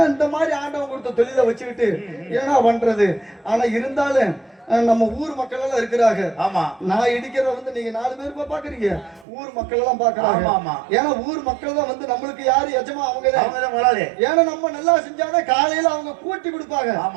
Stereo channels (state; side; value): drops out; left; at 9.2 s